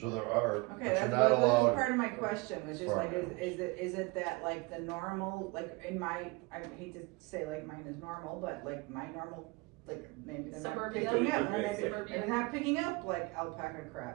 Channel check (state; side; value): quieter; left; 25.5 dB